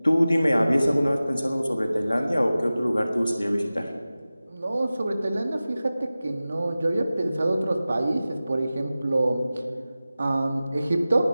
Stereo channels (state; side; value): inverted; both; correlation -0.96